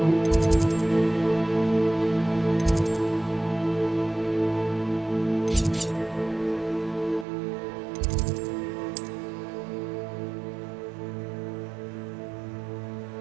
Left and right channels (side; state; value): left; drops out; at 7.2 s